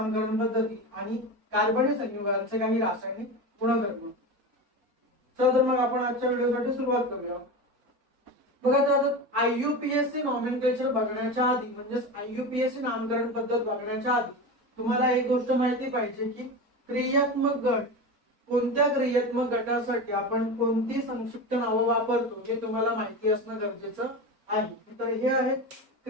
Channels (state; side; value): late; left; 4.2 ms